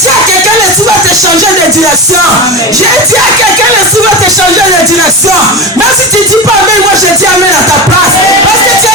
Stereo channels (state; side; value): normal; both; correlation 0.23